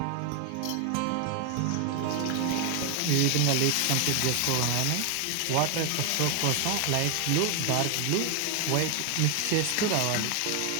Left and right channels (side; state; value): both; different; correlation 0.01